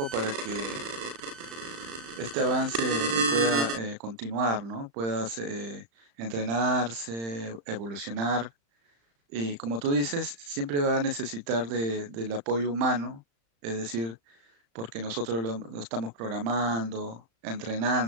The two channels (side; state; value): left; late; 35 ms